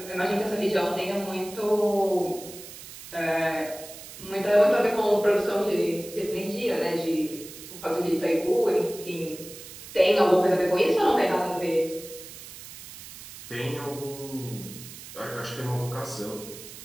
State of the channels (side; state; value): right; noise; hiss, 14 dB below the sound